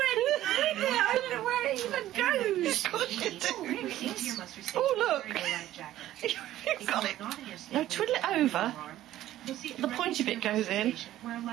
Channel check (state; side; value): quieter; left; 13.8 dB